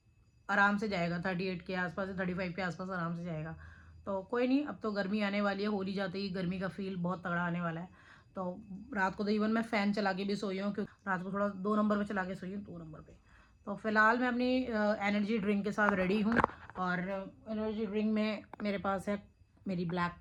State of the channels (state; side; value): identical; both; correlation 1.00